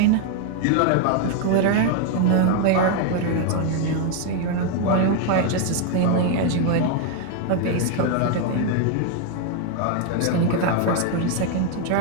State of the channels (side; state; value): both; different; correlation 0.01